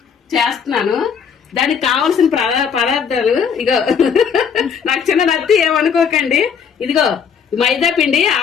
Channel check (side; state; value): right; quieter; 6.8 dB